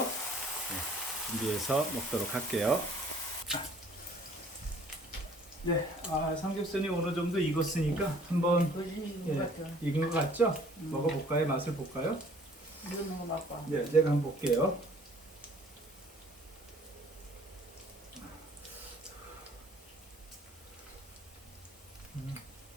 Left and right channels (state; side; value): normal; both; correlation 0.55